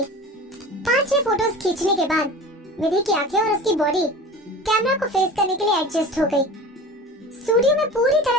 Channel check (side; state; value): both; normal; correlation 0.37